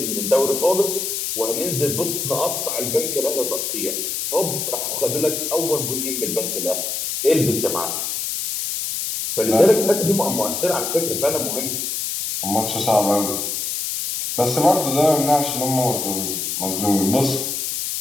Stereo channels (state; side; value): noise; left; hiss, 2 dB below the sound